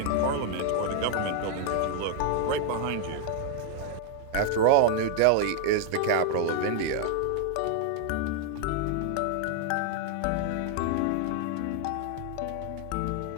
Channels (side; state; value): both; different; correlation 0.00